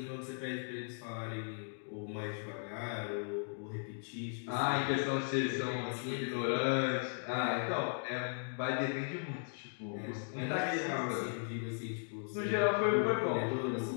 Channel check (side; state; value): right; silent; digital silence